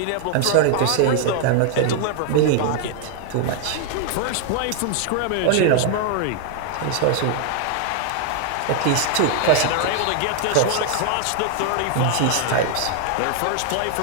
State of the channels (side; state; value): both; different; correlation 0.00